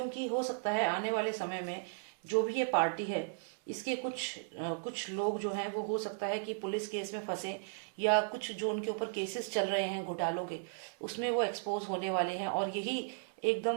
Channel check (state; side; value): silent; left; digital silence